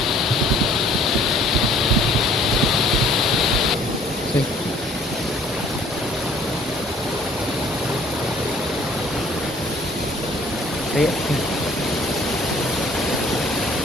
See? See it?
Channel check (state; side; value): normal; both; correlation 0.55